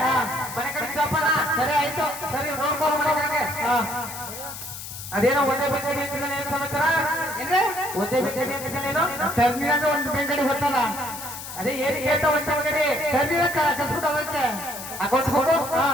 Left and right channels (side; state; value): left; noise; hiss, 10 dB below the sound